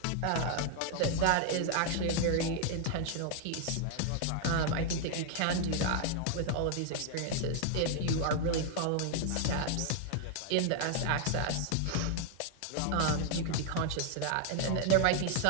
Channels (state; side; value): different; both; correlation 0.00